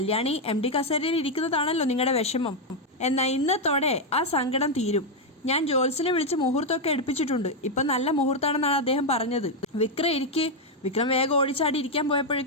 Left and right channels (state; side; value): normal; both; correlation 0.02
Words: MD കസേരയിൽ ഇരിക്കുന്നതാണല്ലോ നിങ്ങളുടെ വിഷമം, എന്നാൽ ഇന്നത്തോടെ ആ സങ്കടം തീരും. ഞാൻ ജോത്സ്യനെ വിളിച്ച് മുഹൂർത്തമൊക്കെ എടുപ്പിച്ചിട്ടുണ്ട്, ഇപ്പം നല്ല മുഹൂർത്തമാണെന്നാണ് അദ്ദേഹം പറഞ്ഞത്. വിക്രം വേഗം ഓടിച്ചാടി ഇരിക്കാൻ